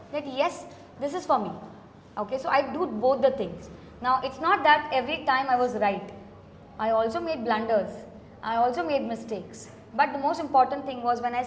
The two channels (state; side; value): identical; both; correlation 1.00